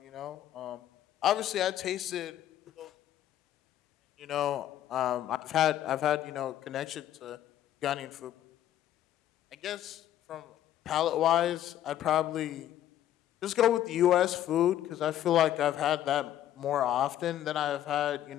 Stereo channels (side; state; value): right; quieter; 11.9 dB